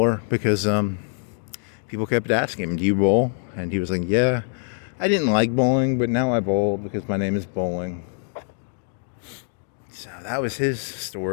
because people kept asking him, do you bowl? And he was like, yeah, I didn't like bowling, but now I bowl because my name is Bowling. So that was his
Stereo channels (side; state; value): right; silent; digital silence